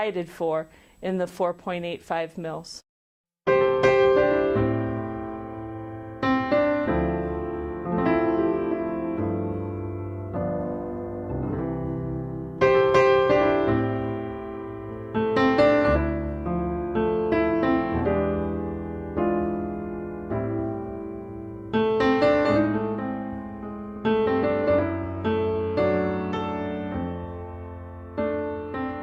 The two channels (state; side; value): identical; both; correlation 1.00